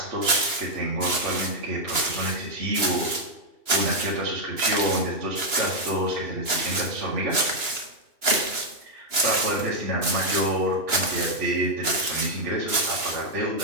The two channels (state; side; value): late; left; 2.9 ms